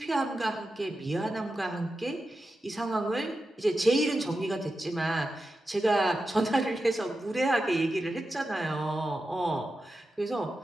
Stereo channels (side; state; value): both; normal; correlation 0.91